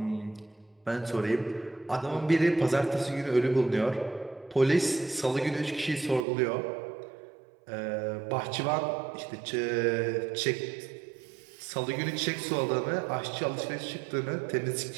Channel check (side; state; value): left; drops out; at 6.2 s